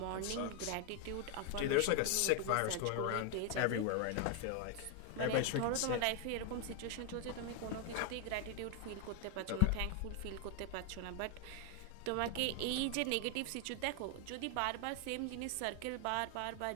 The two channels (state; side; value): different; both; correlation 0.00